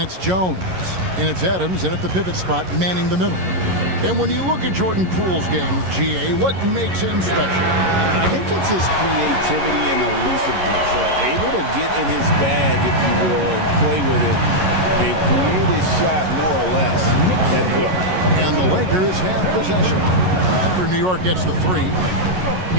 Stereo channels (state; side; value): late; left; 11 ms